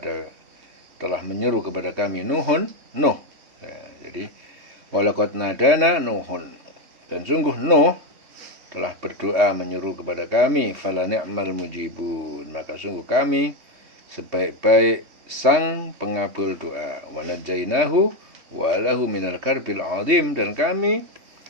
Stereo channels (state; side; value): late; left; 3.3 ms